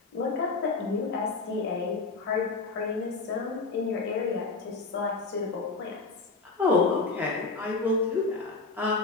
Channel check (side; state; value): right; quieter; 3.9 dB